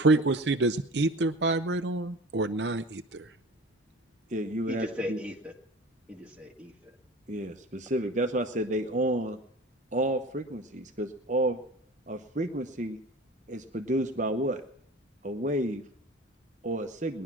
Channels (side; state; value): both; normal; correlation 0.38